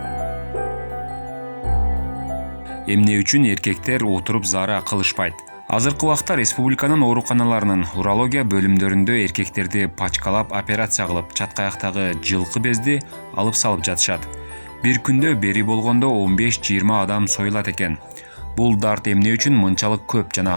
Эмне үчүн эркектер отуруп заара кылышпайт? Азыркы убакта республиканын ооруканаларынын урология бөлүмдөрүндө эркектерди пачкалап операция кылып, чаткаяктагы жылкы безди алып салып жатышат. Бир күндө бери болгондо 15-20 адам союлат экен. Бул дарт эмне үчүн мынчалык көп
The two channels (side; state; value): both; inverted; correlation -1.00